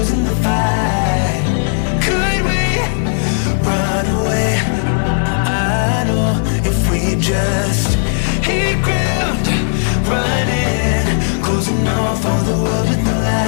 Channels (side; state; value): right; silent; 67 dB below the other